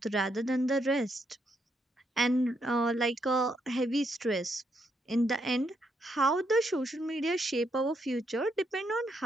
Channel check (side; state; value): both; normal; correlation 0.77